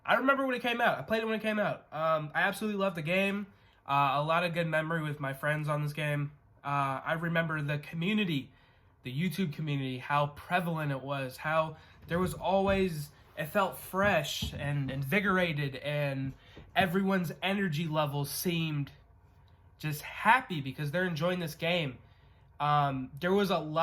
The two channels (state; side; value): identical; both; correlation 1.00